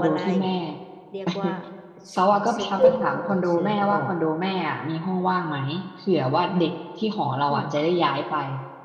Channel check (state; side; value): identical; both; correlation 1.00